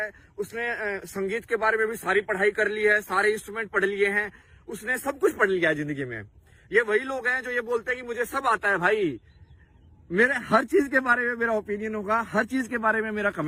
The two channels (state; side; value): identical; both; correlation 1.00